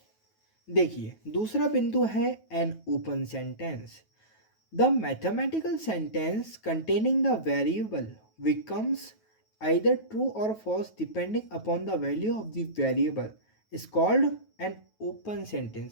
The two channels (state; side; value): late; right; 9.3 ms